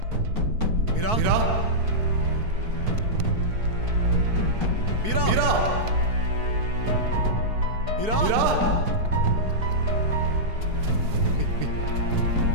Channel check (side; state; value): left; late; 4.6 ms